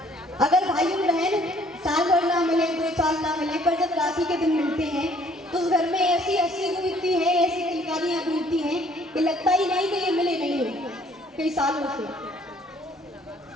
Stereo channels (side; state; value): both; normal; correlation 0.60